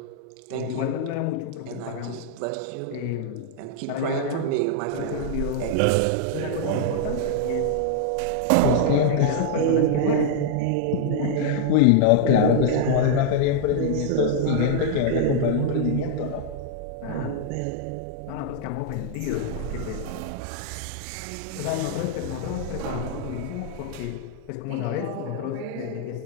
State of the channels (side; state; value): both; different; correlation -0.01